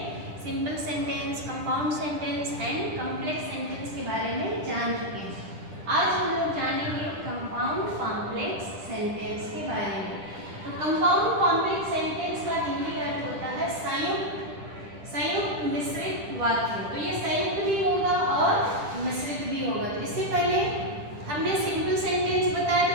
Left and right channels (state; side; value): late; left; 10 ms